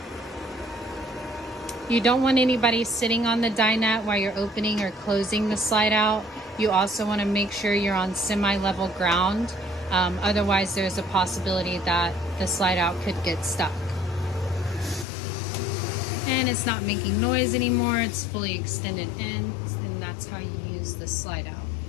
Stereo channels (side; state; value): right; drops out; at 15.1 s